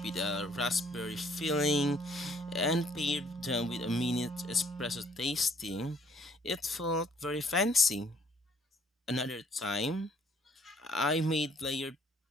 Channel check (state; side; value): normal; both; correlation 0.63